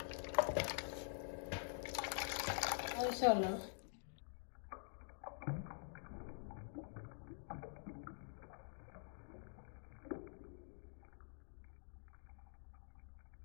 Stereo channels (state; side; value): silent; right; digital silence